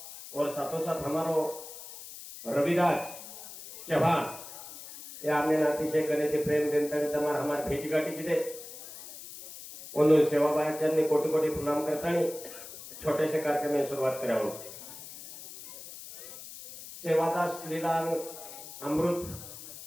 और साथों साथ हमारो रविदास चौहान या हमने अतिशय गणित प्रेम जनता हमारे हमारे भेटी गाठी की उन सेवाबाई कोटि कोटि प्रणाम करता छोटे से कार्यक्रम में शुरुआत करा सेवादास लीला अमृत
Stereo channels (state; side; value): noise; left; hiss, 14 dB below the sound